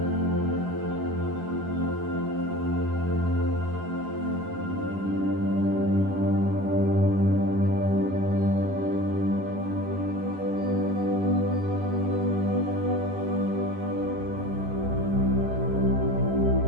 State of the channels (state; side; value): late; left; 11 ms